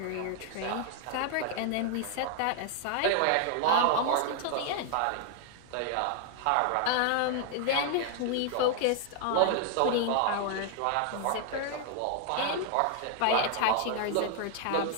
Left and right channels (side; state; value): both; different; correlation 0.00